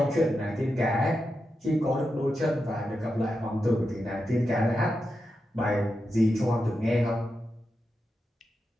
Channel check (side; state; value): both; normal; correlation 0.88